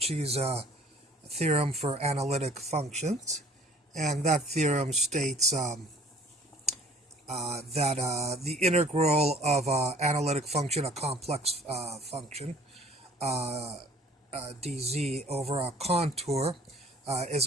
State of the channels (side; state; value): both; normal; correlation 0.53